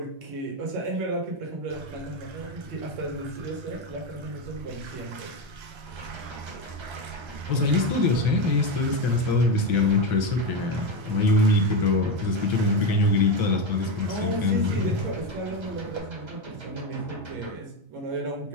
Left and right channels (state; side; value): late; left; 1.3 ms